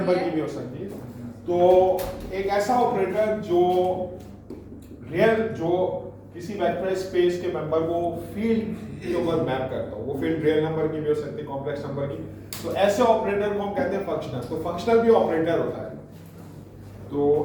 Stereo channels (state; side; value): identical; both; correlation 1.00